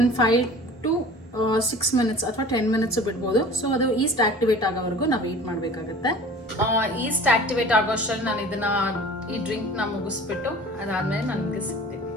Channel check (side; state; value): both; normal; correlation 0.43